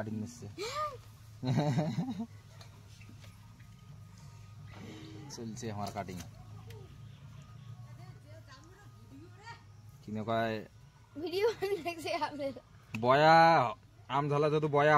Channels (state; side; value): identical; both; correlation 1.00